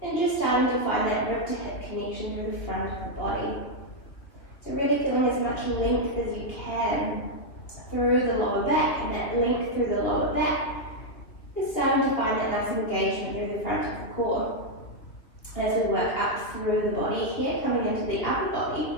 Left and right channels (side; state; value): right; late; 3.2 ms